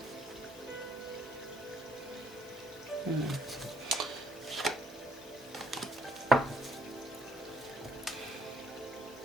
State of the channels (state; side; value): normal; both; correlation 0.67